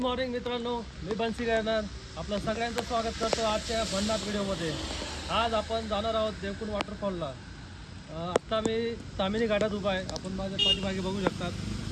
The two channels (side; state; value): both; identical; correlation 1.00